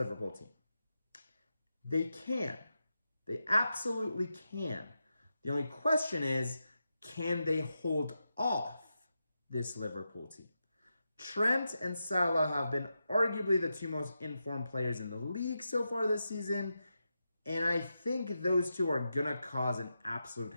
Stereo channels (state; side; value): inverted; both; correlation -0.88